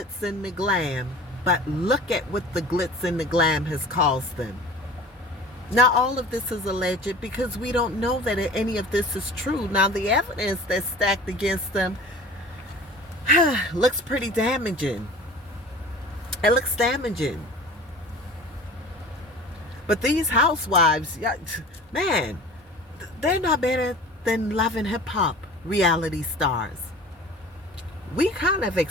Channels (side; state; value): both; normal; correlation 0.41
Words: and the glam, but look at what the glitz and the glam has caused them. Now, all of this is alleged because we don't know that any of this is true. Now, the evidence that's stacked against them looks pretty damaging. It looks damaging. But these housewives, man, they're not better than Love and Hip Hop reality stars. We kind of